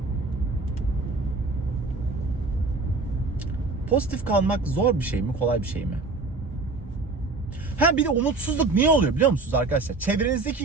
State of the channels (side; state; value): left; quieter; 3.7 dB